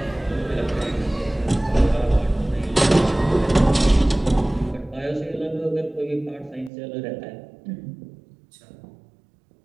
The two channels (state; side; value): drops out; left; at 6.7 s